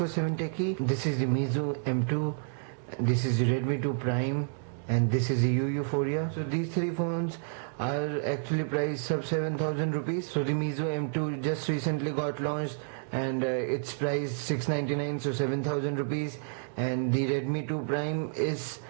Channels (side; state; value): left; silent; 58 dB below the other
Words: Techie. This is the Meizu M2, this is the Redmi 2 Prime, and this is the Euphoria. So these three phones are actually priced sub 7,000 rupees. So the Meizu M2 just recently got launched and it's priced 699, so 7,000 rupees, and the Redmi 2 Prime is